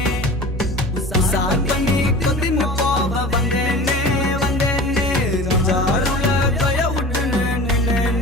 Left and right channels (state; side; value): normal; both; correlation 0.37